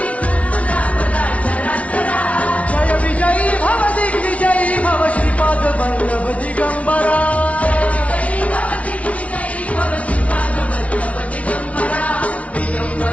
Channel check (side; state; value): right; late; 0.065 ms